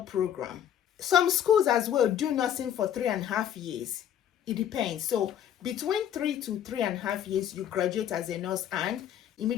Some schools as well do nursing for 3.5 years. It depends. So between 3 to 3.5 years, you graduate as a nurse, and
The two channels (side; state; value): right; quieter; 10.0 dB